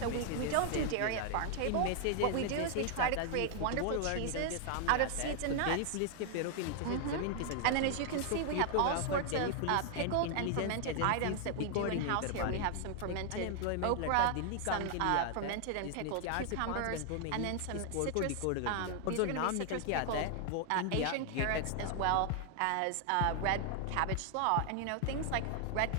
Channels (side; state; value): both; different; correlation 0.00